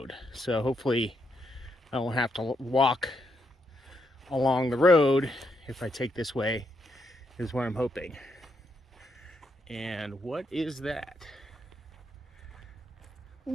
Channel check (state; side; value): normal; both; correlation 0.79